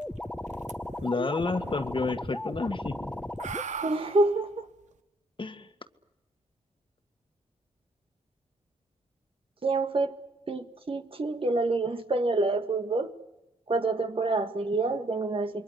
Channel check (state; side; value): normal; both; correlation 0.67